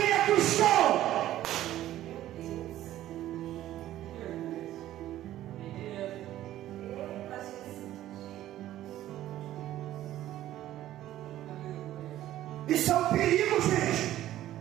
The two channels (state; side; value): quieter; left; 13.5 dB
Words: é cristão? Isso é um perigo, gente.